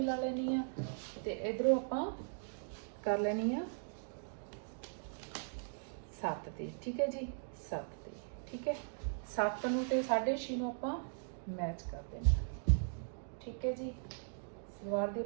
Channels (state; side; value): silent; left; digital silence